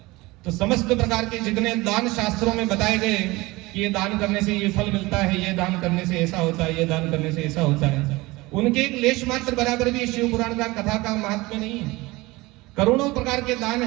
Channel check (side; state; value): left; quieter; 21.4 dB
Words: तो समस्त प्रकार के जितने दान शास्त्रों में बताए गए कि ये दान करने से ये फल मिलता है, ये दान करने से ऐसा होता है, ये दान करने से ऐसा होता है, उनके एक लेश मात्र बराबर भी शिव पुराण का कथा का महात्म्य नहीं है। करोड़ों प्रकार के दान